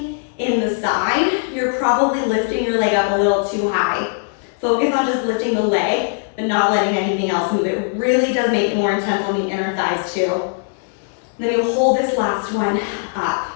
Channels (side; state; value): right; silent; digital silence